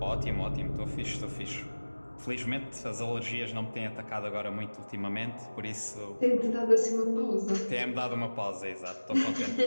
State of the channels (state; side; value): inverted; both; correlation -1.00